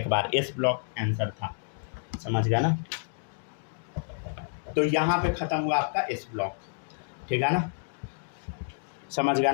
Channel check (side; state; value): right; silent; digital silence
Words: बार, एस ब्लॉक आंसर था, समझ गया ना। तो यहाँ पे ख़त्म हुआ आपका एस ब्लॉक, ठीक है ना, समझ गया